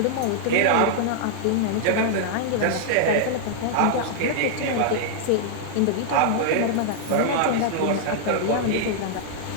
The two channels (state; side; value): different; both; correlation 0.00